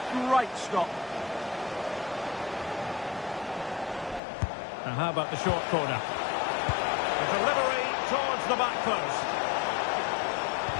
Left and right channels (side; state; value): right; drops out; at 4.2 s